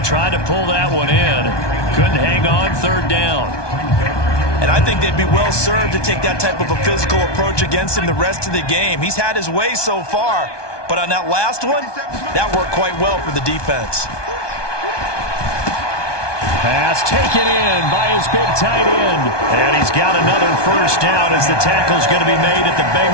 to pull that one in. Couldn't hang on. 3rd down. And I think they'd be well served to take that type of a physical approach against him the rest of the game. He's had his way so far, But on that last one, that worked quite well for the defense. Pass taken in by his big tight end. And he's got another first down as the tackle's going to be made at the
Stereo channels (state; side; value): late; right; 1.2 ms